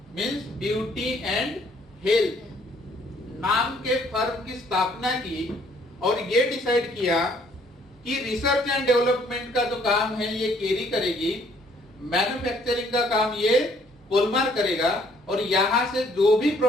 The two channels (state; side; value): normal; both; correlation 0.63